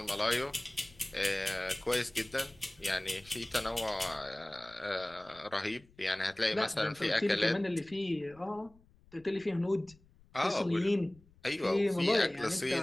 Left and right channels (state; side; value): noise; left; rumble, 27 dB below the sound